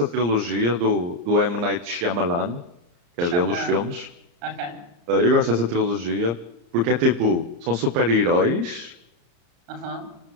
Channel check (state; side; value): late; left; 34 ms